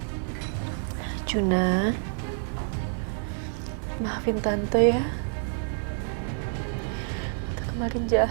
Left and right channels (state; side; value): silent; left; 59 dB below the other